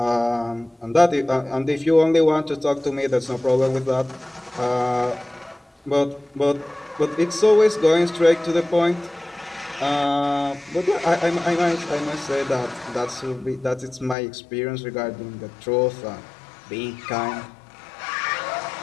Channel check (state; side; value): drops out; right; at 14.2 s